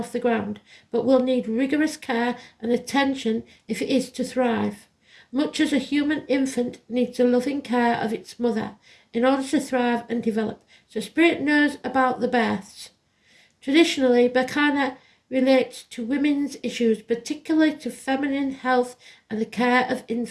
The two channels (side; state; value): both; identical; correlation 1.00